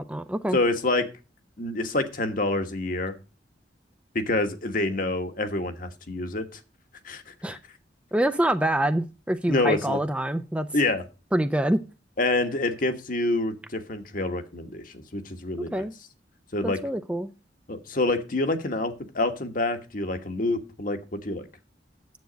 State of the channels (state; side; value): normal; both; correlation 0.44